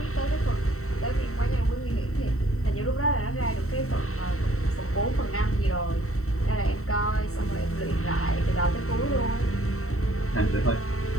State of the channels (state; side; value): late; right; 0.64 ms